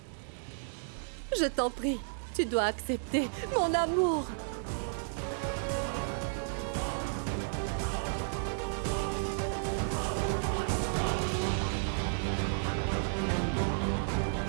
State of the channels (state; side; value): silent; left; digital silence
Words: Je t'en prie, tu dois accepter mon amour.